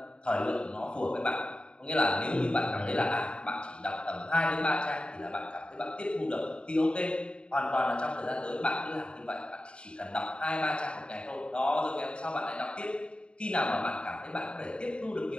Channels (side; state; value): right; late; 0.054 ms